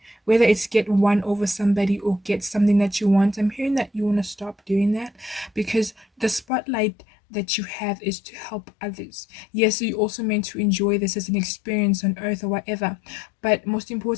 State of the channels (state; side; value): drops out; right; at 6.5 s